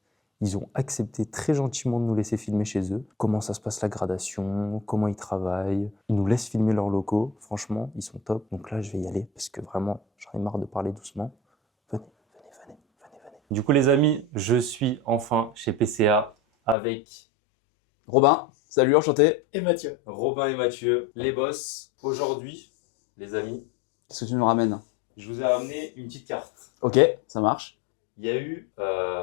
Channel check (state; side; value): drops out; right; at 16.8 s